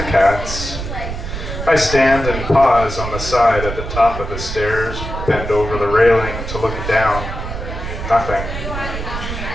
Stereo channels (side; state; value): right; noise; rumble, 6 dB below the sound